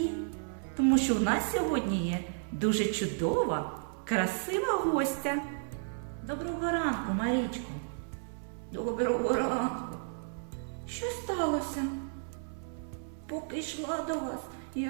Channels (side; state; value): left; silent; 56 dB below the other